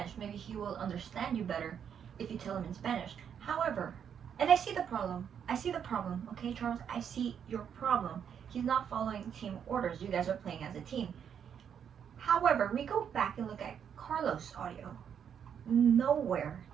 Maybe he will understand you better if you tell him in Spanish. However, and I see the problem. Okay, Charles? I see your problem. He's not following team orders. You guys are playing as a team. However, we go back and look at Carlos' audio. Nowhere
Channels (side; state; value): left; quieter; 8.1 dB